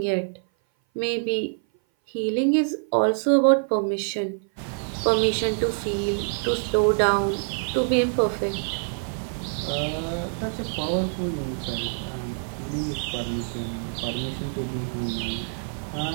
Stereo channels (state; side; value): silent; left; 57 dB below the other